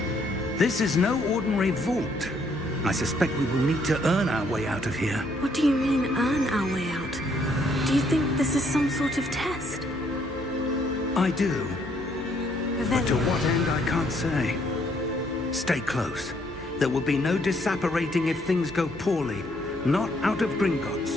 This is no ordinary vault. I suspect we will need to earn our way out of here. What do you mean, earn our way out? Do you think this is some sort of test? I do, but to Revelio. what end I can't say. Stay close. There will be no disapparating if things go poorly. Not out of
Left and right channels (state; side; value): normal; both; correlation 0.69